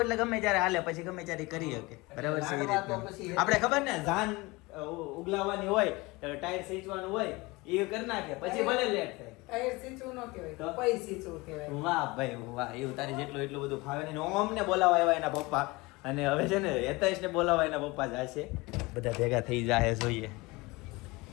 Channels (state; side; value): quieter; right; 23.3 dB